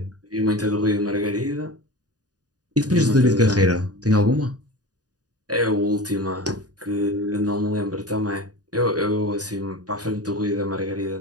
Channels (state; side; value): late; left; 0.68 ms